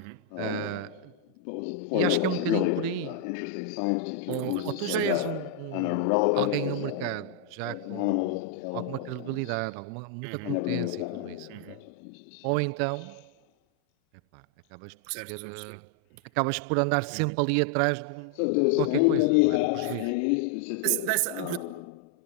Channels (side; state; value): both; different; correlation 0.00